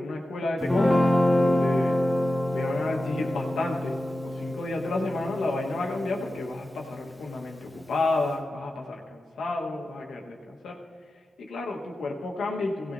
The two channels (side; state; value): both; normal; correlation 0.93